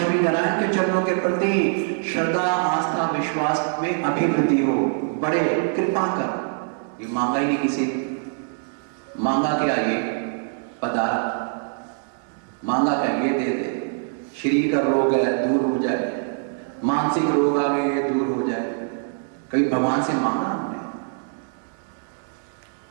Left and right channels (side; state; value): left; silent; 63 dB below the other